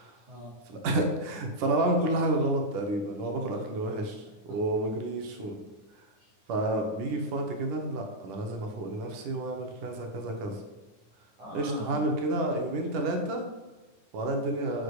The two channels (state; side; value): late; left; 10 ms